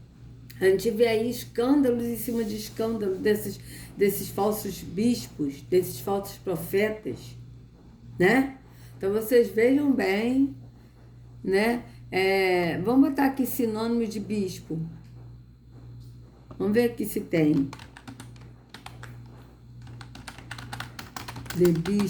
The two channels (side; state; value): both; identical; correlation 1.00